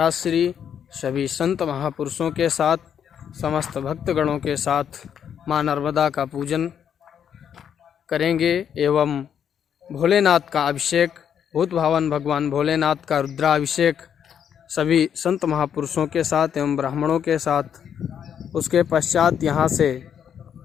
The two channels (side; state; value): right; quieter; 8.5 dB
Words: श्री सभी संत महापुरुषों के साथ समस्त भक्तगणों के साथ माँ नर्मदा का पूजन करेंगे एवं भोलेनाथ का अभिषेक, भूत भावन भगवान भोलेनाथ का रुद्राभिषेक सभी संत महापुरुषों के साथ एवं ब्राह्मणों के साथ। उसके पश्चात यहाँ से